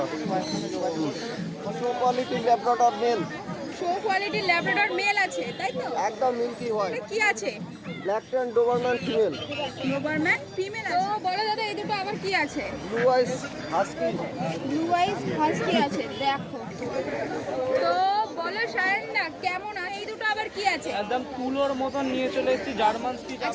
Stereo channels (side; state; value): both; identical; correlation 1.00